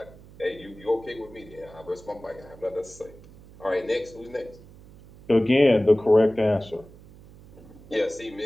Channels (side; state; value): right; noise; hum, 21 dB below the sound